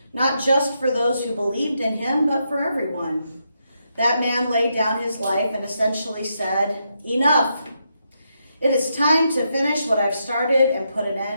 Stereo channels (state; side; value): inverted; both; correlation -0.81